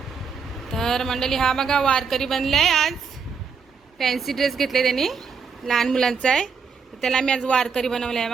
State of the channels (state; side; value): quieter; left; 5.7 dB